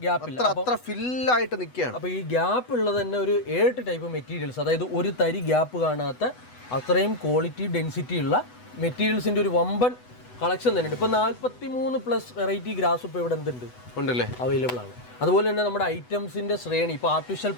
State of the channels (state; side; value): late; right; 8.1 ms